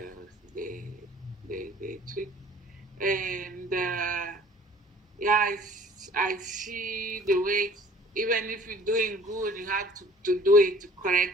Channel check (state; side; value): normal; both; correlation 0.52